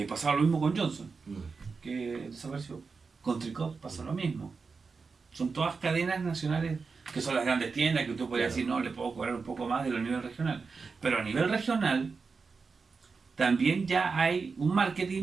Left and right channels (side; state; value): left; quieter; 4.8 dB